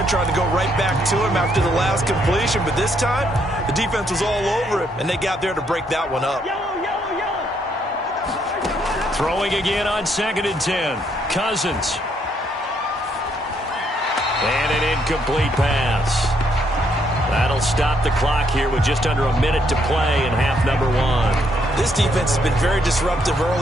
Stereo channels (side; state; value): both; normal; correlation 0.72